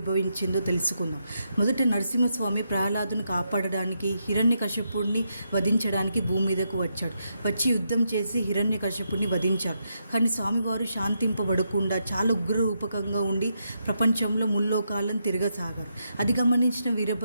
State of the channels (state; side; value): inverted; both; correlation -0.82